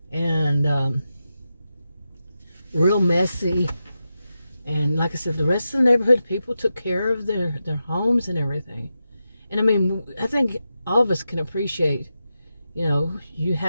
and real messy. And like I said, the rest of the neighborhood, people took care of their homes and everything. And I mean, I think all of us can appreciate, you know, you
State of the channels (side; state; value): both; inverted; correlation -0.89